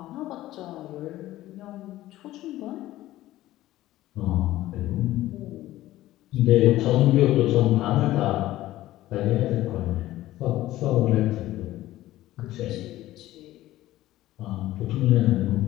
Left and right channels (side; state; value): right; quieter; 15.4 dB